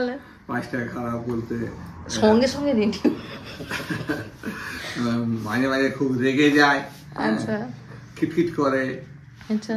5টা খারাপ বলতে সঙ্গে সঙ্গে রেডি। মাঝে মাঝে খুব রেগে যায়, আচ্ছা খিটখিট করে। আচ্ছা,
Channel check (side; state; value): both; identical; correlation 1.00